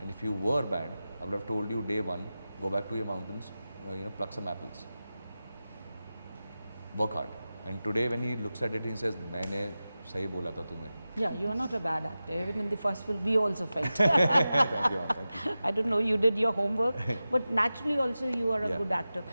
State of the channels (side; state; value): both; inverted; correlation -0.95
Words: And if you were bad, I would have told you day one, go back to your mountains, pluck some apples. Work hard. And today when he looks at it, he says, मैंने सही बोला था तुम्हें. Yeah, you are not a bad actor. Even in the first film, we also felt. Thank you. I don't know, you did your homework, but naturally also you are a Yeah. good actor.